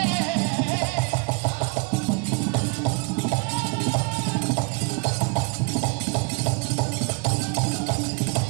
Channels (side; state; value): left; quieter; 33.1 dB